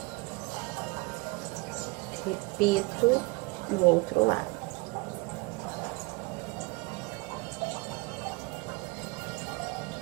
Repito no outro lado.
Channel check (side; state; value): left; quieter; 25.3 dB